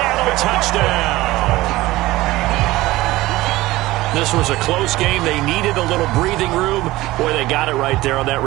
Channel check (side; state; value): left; quieter; 18.2 dB